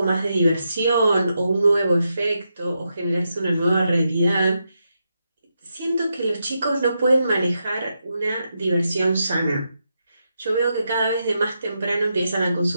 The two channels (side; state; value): both; inverted; correlation -0.84